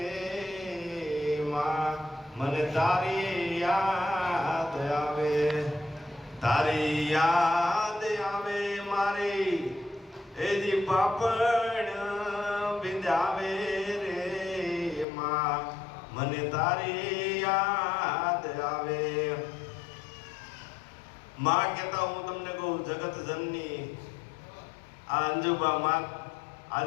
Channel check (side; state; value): right; drops out; at 15.1 s